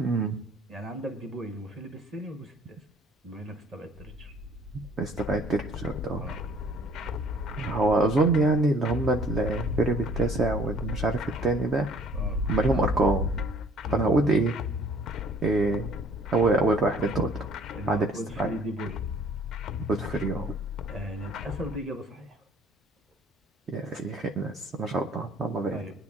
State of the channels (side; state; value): both; normal; correlation 0.56